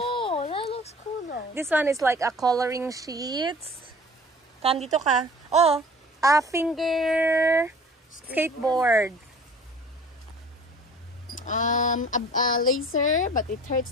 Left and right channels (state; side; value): normal; both; correlation 0.46